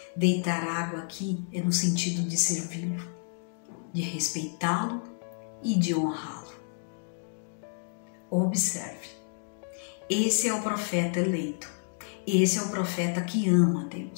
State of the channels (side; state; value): right; silent; digital silence